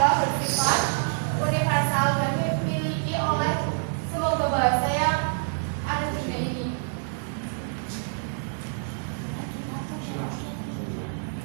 bersifat universal dan dimiliki oleh semua bahasa yang ada di dunia ini.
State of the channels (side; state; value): left; silent; digital silence